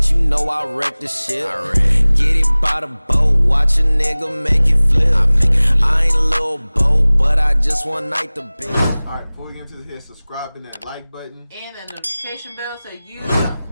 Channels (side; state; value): both; inverted; correlation -0.99